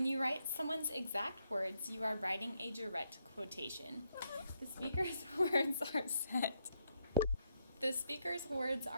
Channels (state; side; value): inverted; both; correlation -0.79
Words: you write someone's exact words, you are writing a direct quotation. The speaker's words are set. The speaker's words